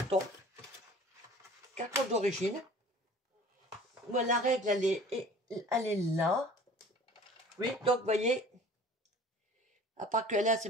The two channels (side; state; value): both; normal; correlation 0.47